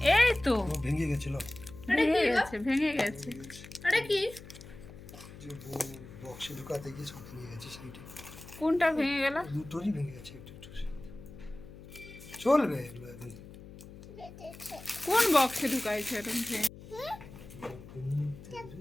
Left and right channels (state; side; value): noise; left; hum, 16 dB below the sound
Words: এই তো ভেঙে গেছিল। ভেঙে গেছে। এটা কি? যে বক্সে ঢুকাতে গিয়ে সব ভেঙে গেছে, সেইটা কোনটা ভেঙে গেল? দুটোরই ভেঙে গেছে একটু একটু। চলবে এগুলো এখন। কোন বক্সে ঢুকাইছে এরকম ভেঙে?